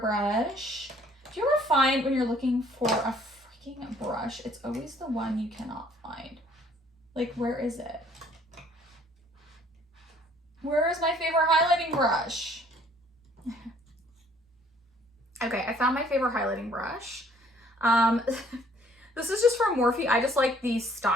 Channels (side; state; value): both; normal; correlation 0.60